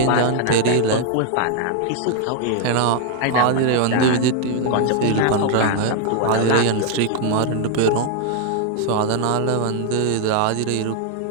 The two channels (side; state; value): both; different; correlation 0.00